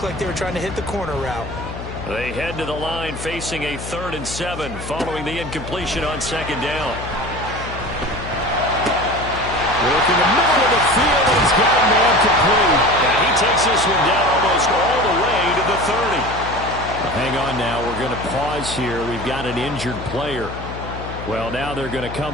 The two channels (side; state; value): left; noise; hum, 10 dB below the sound